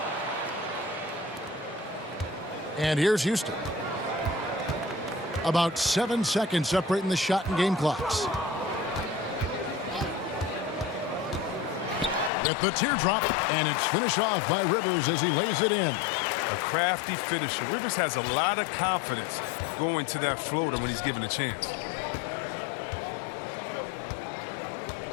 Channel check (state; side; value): drops out; right; at 12.3 s